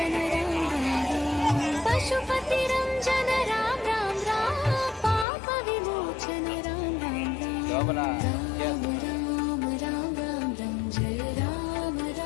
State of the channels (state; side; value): drops out; right; at 5.2 s